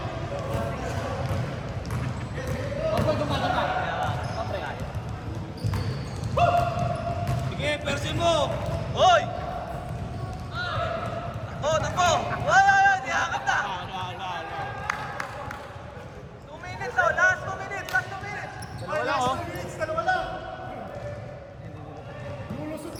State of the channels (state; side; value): identical; both; correlation 1.00